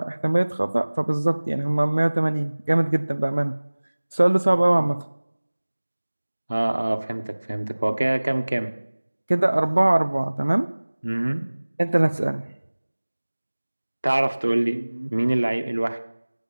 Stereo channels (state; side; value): inverted; both; correlation -1.00